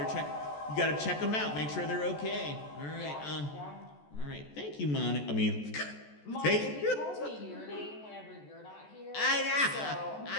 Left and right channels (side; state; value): right; late; 14 ms